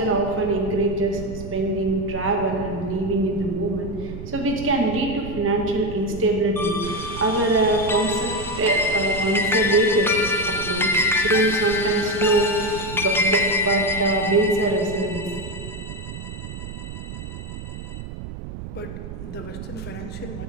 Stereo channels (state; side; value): noise; right; rumble, 10 dB below the sound